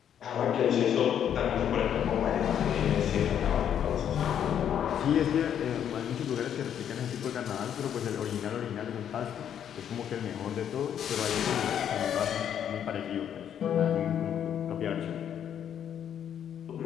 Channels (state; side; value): quieter; right; 9.3 dB